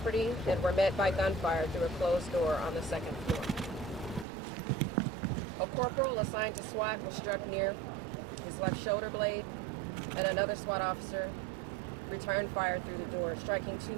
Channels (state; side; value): drops out; left; at 4.2 s